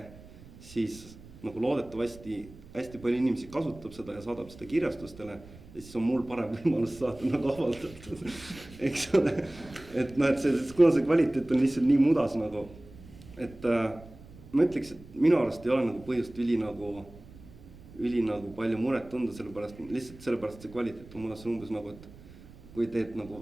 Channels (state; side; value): noise; right; rumble, 19 dB below the sound